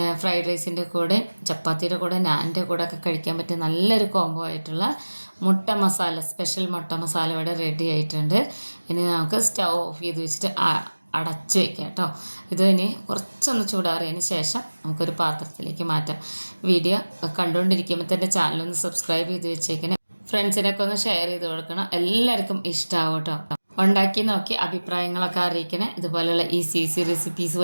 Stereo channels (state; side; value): inverted; both; correlation -1.00